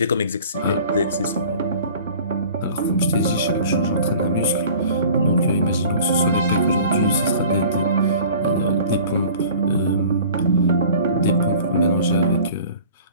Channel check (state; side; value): inverted; both; correlation -0.46